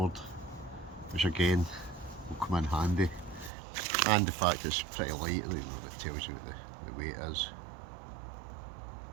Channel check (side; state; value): left; drops out; at 3.5 s